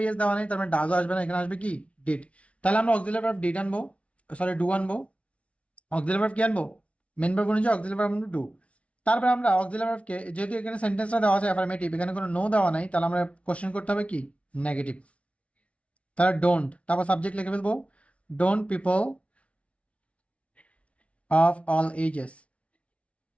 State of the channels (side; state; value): right; late; 0.063 ms